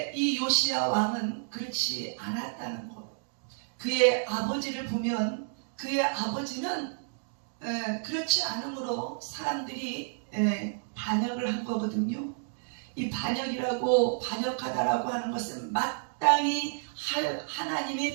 이 요시야 왕은 그렇지 않았다는 것. 그의 아버지를 보면 그의 아버지는 그렇지 않으므로 사람들이 반역을 한 거거든요. 이 반역하다라고 하는 것은 마땅히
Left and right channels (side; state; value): left; silent; digital silence